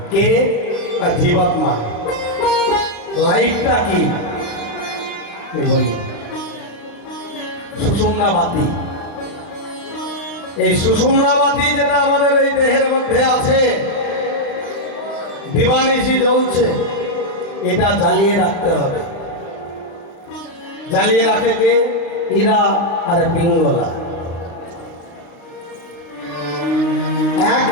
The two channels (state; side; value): late; right; 35 ms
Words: কে? না জীবাত্মা। লাইটটা কি বলি? সুষুম্না বাতি। এই সুষুম্না বাতি যেটা আমাদের এই দেহের মধ্যে আছে, দিবানিশি জ্বলছে, এটা জ্বালিয়ে রাখতে হবে। জ্বালিয়ে রাখে কে? ইরা আর পিঙ্গলা। এক